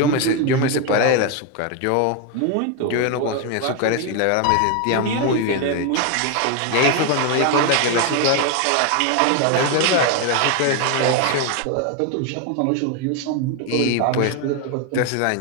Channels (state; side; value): different; both; correlation 0.01